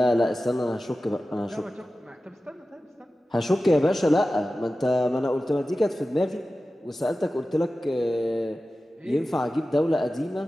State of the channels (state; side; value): normal; both; correlation 0.95